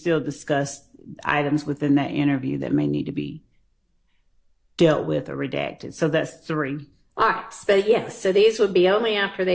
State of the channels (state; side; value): identical; both; correlation 1.00